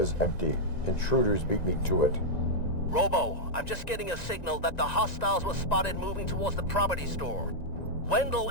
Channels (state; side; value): late; right; 1.9 ms